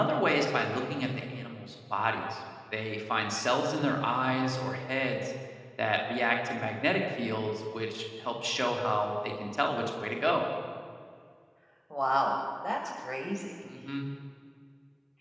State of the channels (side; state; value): both; identical; correlation 1.00